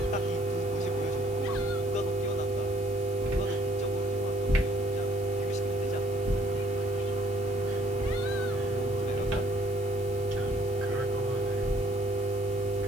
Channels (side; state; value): left; noise; hiss, 18 dB below the sound